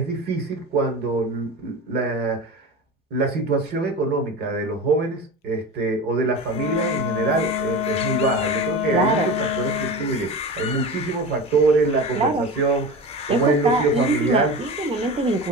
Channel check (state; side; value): normal; both; correlation 0.30